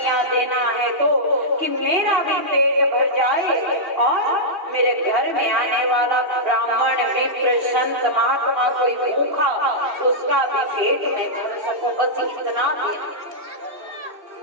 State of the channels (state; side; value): late; left; 2.7 ms